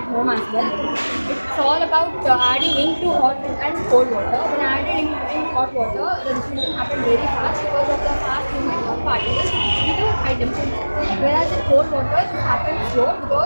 home as well. It's all about adding ink to hot and cold water. When I added ink in hot water, the diffusion happened very fast because of the fast movement of particles due to high temperature. Whereas in cold water, it happens slow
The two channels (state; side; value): inverted; both; correlation -1.00